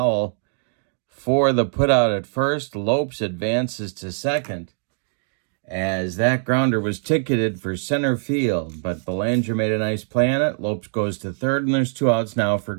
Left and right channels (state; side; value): silent; left; digital silence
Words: for the putout at first. Lopes advances to second as that grounder was ticketed for center field, but Belanger made a nice play on it. Lopes goes to third, and there's 2 outs now for